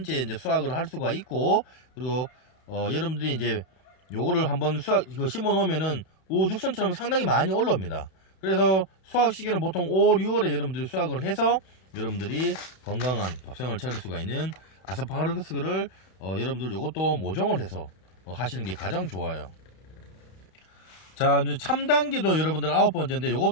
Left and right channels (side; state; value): right; late; 32 ms